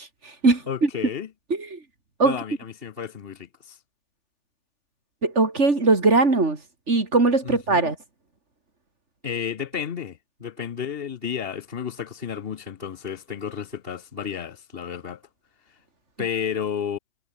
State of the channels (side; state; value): left; late; 3.4 ms